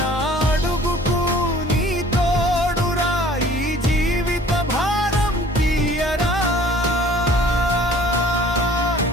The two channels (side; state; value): both; normal; correlation 0.52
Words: అడుగుకు నీ తోడురా ఈ జీవిత భారం తీయరా